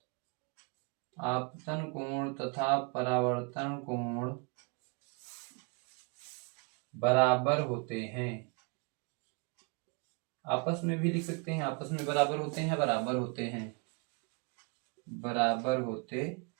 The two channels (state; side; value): quieter; left; 33.9 dB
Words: आपतन कोण तथा परावर्तन कोण बराबर होते हैं। आपस में भी लिख सकते हैं, आपस में बराबर होते हैं, बराबर होते हैं, बराबर होते